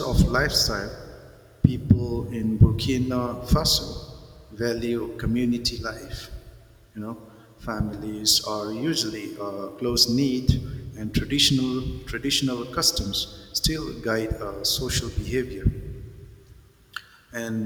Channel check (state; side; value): identical; both; correlation 1.00